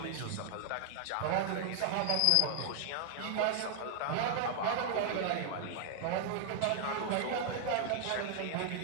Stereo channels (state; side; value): different; both; correlation 0.00